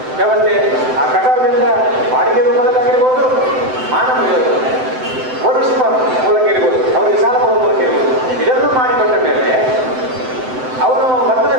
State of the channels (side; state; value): left; late; 7.8 ms